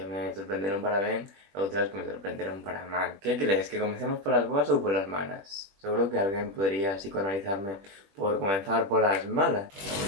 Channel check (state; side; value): late; left; 20 ms